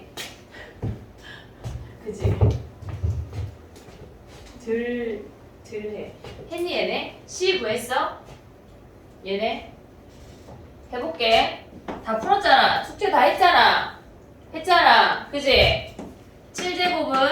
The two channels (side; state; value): both; identical; correlation 1.00